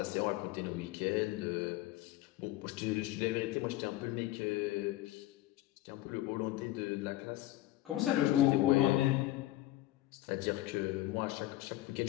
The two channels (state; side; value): quieter; right; 16.1 dB